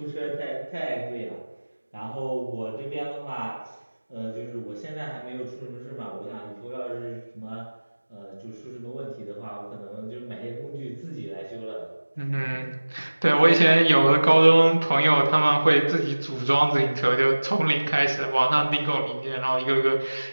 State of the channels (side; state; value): both; inverted; correlation -1.00